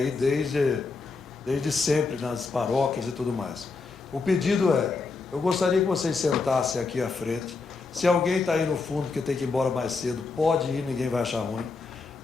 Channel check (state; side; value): quieter; right; 4.2 dB